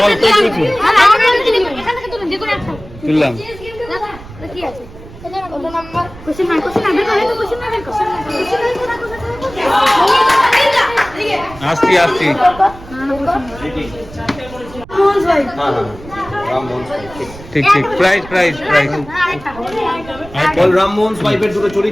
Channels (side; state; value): right; noise; rumble, 17 dB below the sound